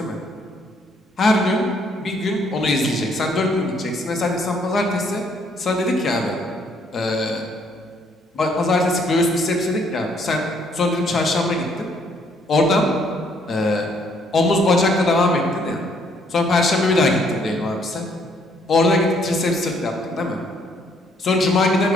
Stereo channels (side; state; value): both; normal; correlation 0.67